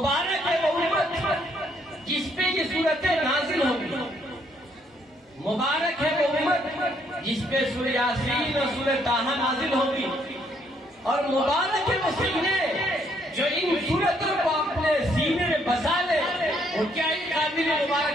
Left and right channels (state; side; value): normal; both; correlation 0.70